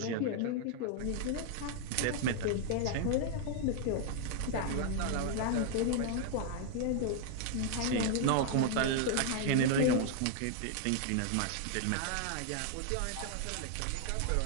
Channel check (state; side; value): different; both; correlation 0.00